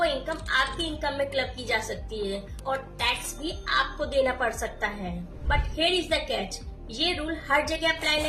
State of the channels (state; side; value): identical; both; correlation 1.00